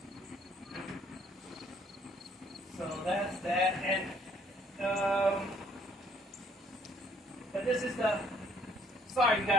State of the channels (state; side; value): normal; both; correlation 0.63